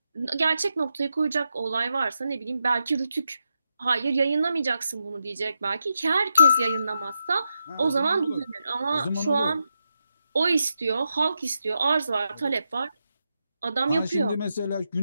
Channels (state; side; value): inverted; both; correlation -0.85